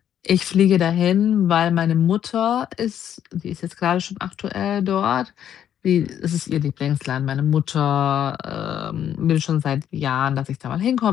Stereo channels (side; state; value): right; quieter; 9.9 dB